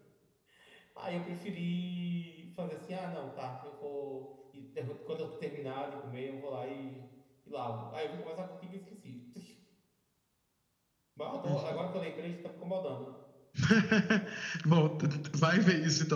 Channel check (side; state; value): both; identical; correlation 1.00